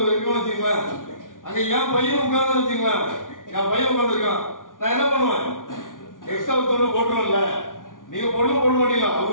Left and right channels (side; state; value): right; late; 0.88 ms